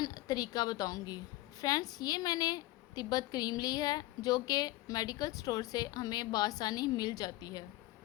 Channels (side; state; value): right; quieter; 18.1 dB